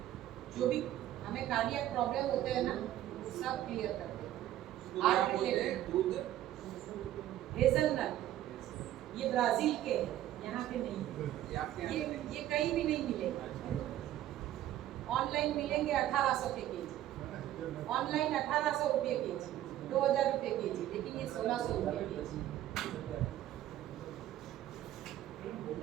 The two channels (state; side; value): quieter; left; 13.0 dB